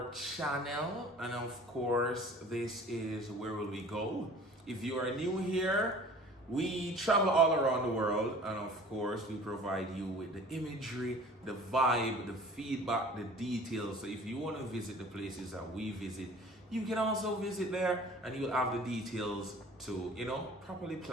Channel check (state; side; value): normal; both; correlation 0.46